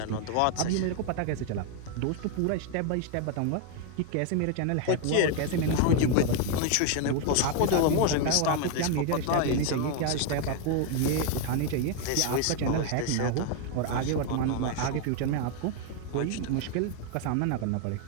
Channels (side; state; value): both; different; correlation 0.01